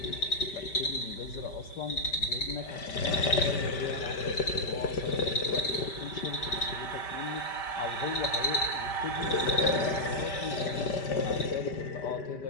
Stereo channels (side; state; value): right; late; 5.1 ms